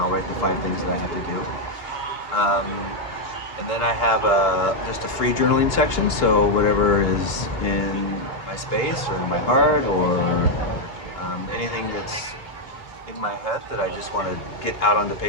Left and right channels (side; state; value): right; late; 2.8 ms